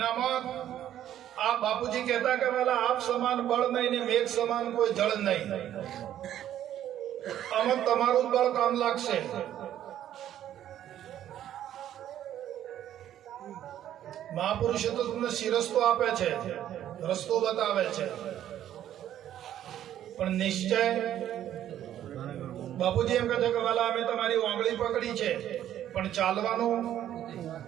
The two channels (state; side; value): quieter; left; 11.4 dB